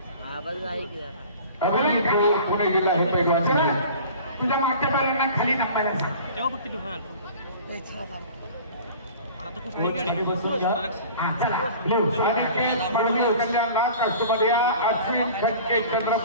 आवाज आहे की जरा. पुणे जिल्हा हे पैलवान तुझ्या मागच्या बैलांना खाली नंपायला सांग. चला मळवी कल्याणला कष्टमध्ये अश्विन खटके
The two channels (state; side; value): inverted; both; correlation -0.43